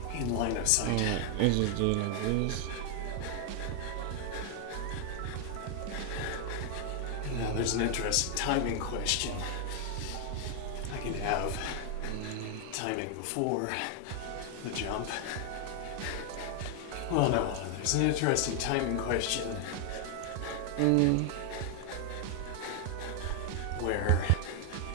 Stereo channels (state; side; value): different; both; correlation 0.00